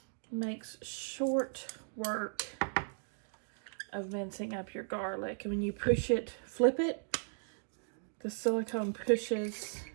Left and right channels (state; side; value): silent; left; digital silence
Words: Makes short work of mincing up your garlic. And when you push it, flip it, the silicone pushes